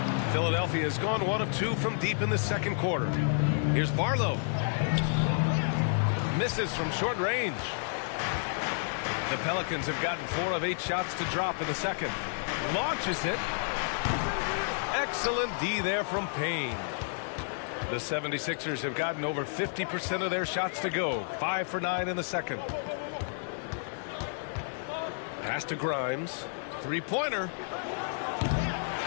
Philadelphia has gone 1 of 2 from deep in the second quarter. Here's Barlow. Misses from short range. The Pelicans have gotten 4 of 8 shots to drop in the second. Launches it. Excellent D there from Payne. The 76ers have gotten over 50% of their shots to go. 5 for 9 in the second. Pass to Grimes. 3-pointer.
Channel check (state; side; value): silent; right; digital silence